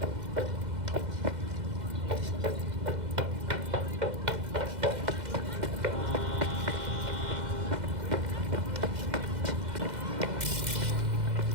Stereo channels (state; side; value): late; left; 2.0 ms